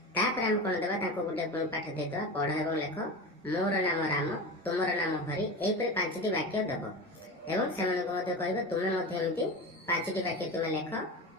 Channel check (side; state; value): both; normal; correlation 0.27